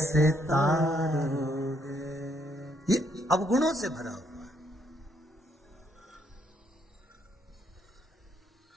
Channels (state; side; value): normal; both; correlation 0.72